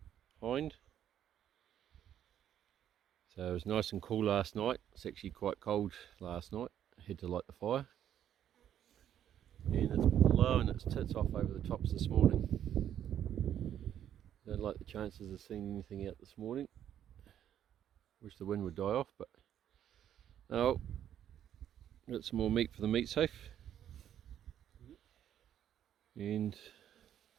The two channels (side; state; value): left; quieter; 10.3 dB